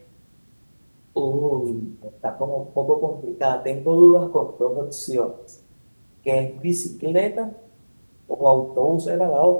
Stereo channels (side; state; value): both; inverted; correlation -1.00